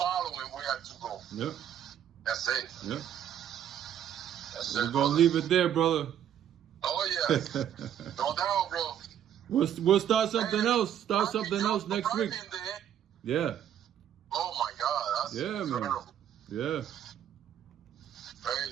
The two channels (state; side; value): quieter; left; 9.9 dB